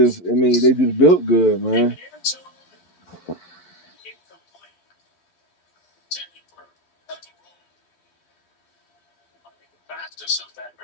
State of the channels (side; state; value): right; late; 12 ms